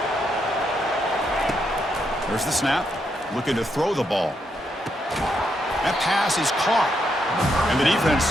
There's the snap. Looking to throw the ball. That pass is caught. And the defense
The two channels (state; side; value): normal; both; correlation 0.79